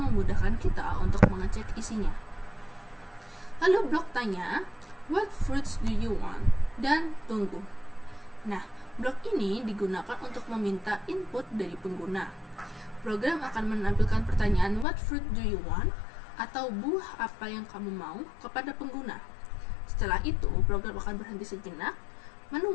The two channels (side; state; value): right; drops out; at 14.9 s